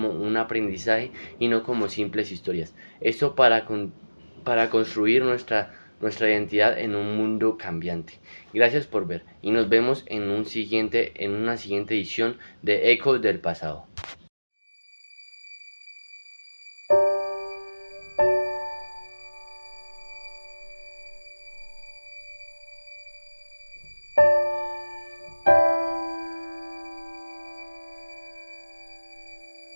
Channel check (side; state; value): both; inverted; correlation -1.00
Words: un aprendizaje y no como simples historias. Esto para construir nuestra identidad en un mundo cambiante. Gracias por ver y nos vemos en una siguiente edición de Ecos del Pasado.